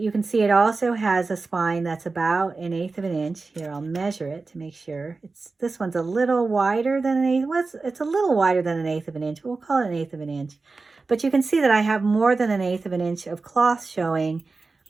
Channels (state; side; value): quieter; left; 3.9 dB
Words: can see it also has a spine that's about 1/8 of an inch. Here, I'll measure it to make sure. This one's a little wider than 1/8. Well, it's a little wider than 1/8 of an inch. We'll call it 1/8 of an inch. But you can see that I have more than 1/8 of an inch of cloth showing